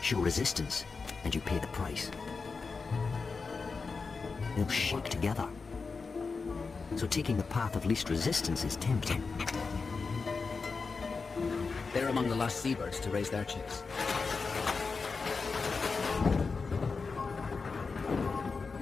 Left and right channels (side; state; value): right; quieter; 4.6 dB